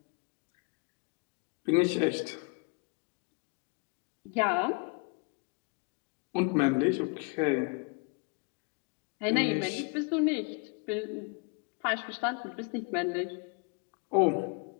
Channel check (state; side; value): quieter; right; 34.1 dB